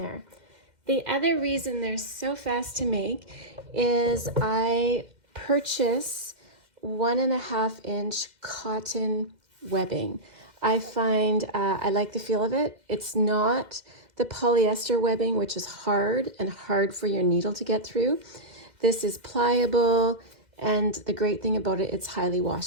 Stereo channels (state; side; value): late; left; 2.1 ms